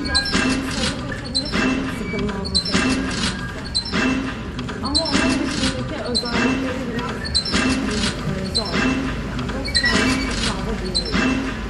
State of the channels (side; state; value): both; identical; correlation 1.00